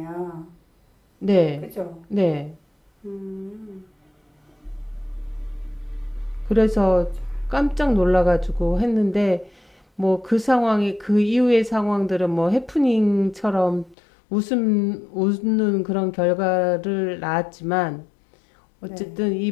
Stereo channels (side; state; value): right; drops out; at 14.0 s